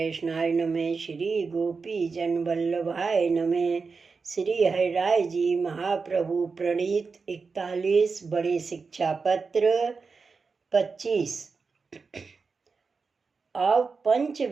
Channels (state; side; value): quieter; left; 4.7 dB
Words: नमः। श्री गोपी जन वल्लभाय नमः। श्री हरिराय जी महाप्रभु प्रणीत 41 बड़े शिक्षा पत्र 25। अब